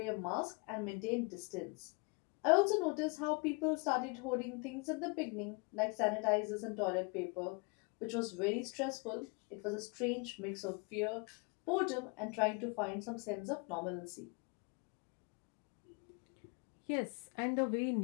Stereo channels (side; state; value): right; quieter; 31.5 dB